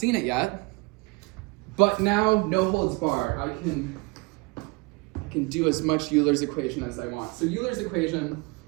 it yet. But now, no holds barred. I can do as much Euler's equation as I want. So Euler's equation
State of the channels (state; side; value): quieter; left; 27.2 dB